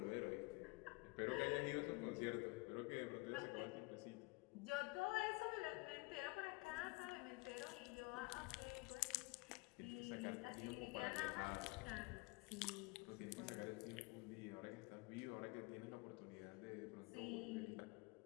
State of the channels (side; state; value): right; quieter; 25.6 dB